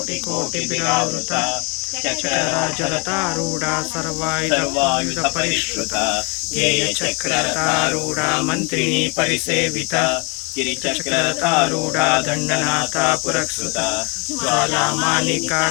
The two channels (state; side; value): quieter; right; 31.5 dB